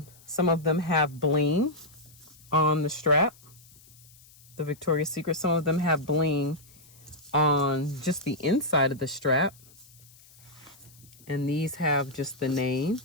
of them have bling on the strap, the Victoria's Secret. Some of them have bling on just the inside of the strap, and these have just the name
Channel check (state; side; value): noise; left; hiss, 25 dB below the sound